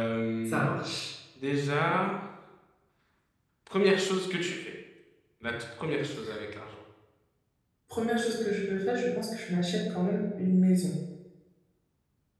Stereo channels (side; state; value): both; identical; correlation 1.00